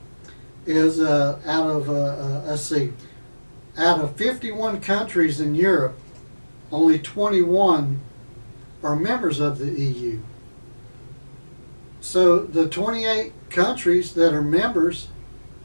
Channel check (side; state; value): both; inverted; correlation -1.00